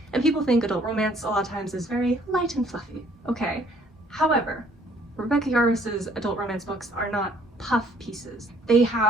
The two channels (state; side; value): normal; both; correlation 0.61